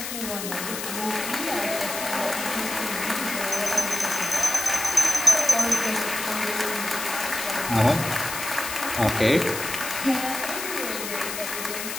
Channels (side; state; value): left; noise; hiss, 6 dB below the sound